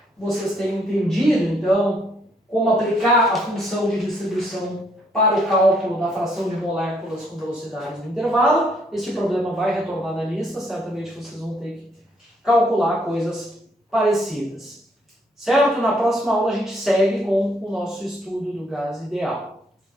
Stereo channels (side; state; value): both; normal; correlation 0.69